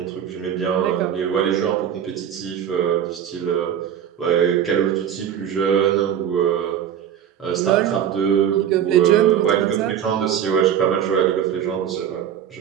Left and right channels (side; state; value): left; quieter; 9.4 dB